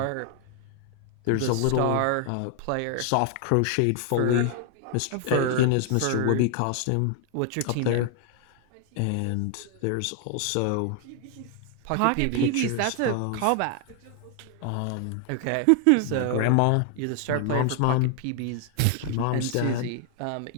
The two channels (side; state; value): both; different; correlation 0.00